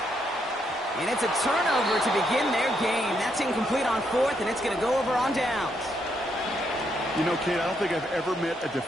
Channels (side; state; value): both; normal; correlation 0.77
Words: And it's a turnover to begin their game. That's incomplete on 4th, and it's going to go over on downs. You know, Kate, I don't think I've ever met a